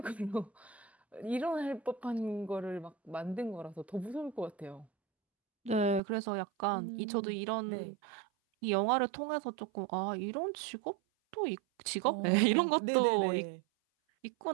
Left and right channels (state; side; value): drops out; left; at 6.0 s